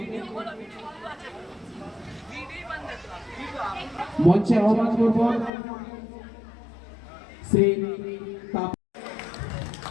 মঞ্চে আহ্বান করব। শ্রী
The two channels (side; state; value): right; drops out; at 5.5 s